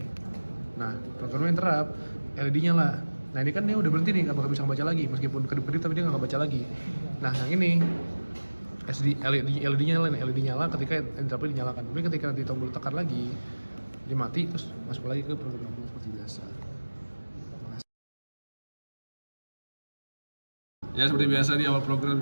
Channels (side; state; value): both; inverted; correlation -1.00